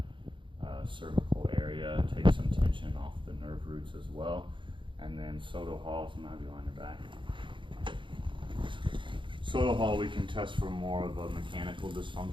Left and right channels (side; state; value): left; late; 0.24 ms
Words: cervical area, take some tension off the nerve roots as well. And then Soto Hall, so I'm going to have you on your back. Soto Hall, we can test for more of a mechanical